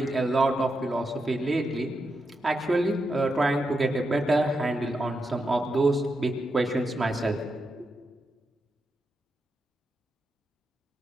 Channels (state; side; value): normal; both; correlation 0.86